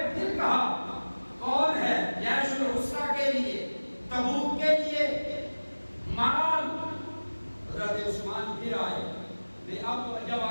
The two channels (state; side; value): inverted; both; correlation -1.00